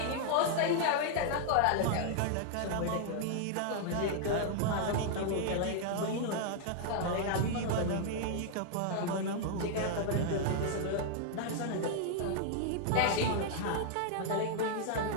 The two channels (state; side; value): different; both; correlation 0.00